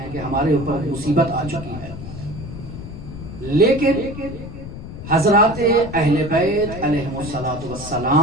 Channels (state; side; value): noise; left; rumble, 11 dB below the sound